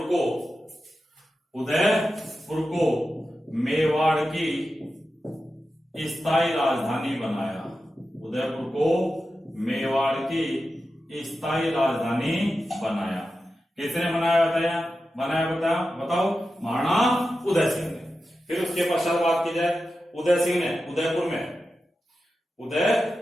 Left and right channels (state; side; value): normal; both; correlation 0.91